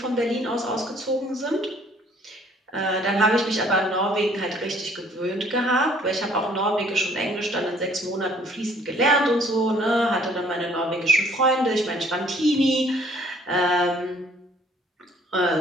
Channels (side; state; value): both; normal; correlation 0.59